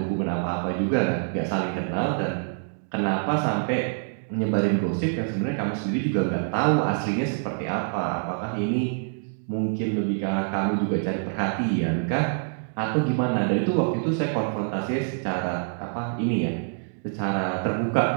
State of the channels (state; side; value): silent; left; 61 dB below the other